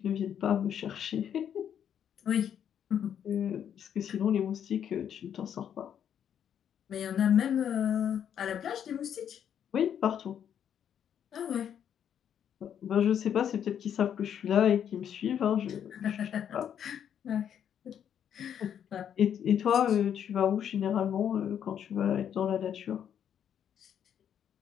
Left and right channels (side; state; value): right; quieter; 9.0 dB